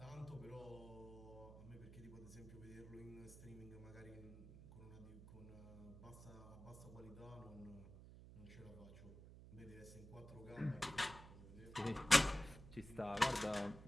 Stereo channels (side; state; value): right; noise; hum, 14 dB below the sound